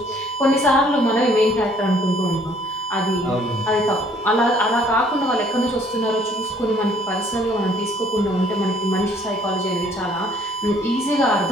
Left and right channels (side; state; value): both; normal; correlation 0.61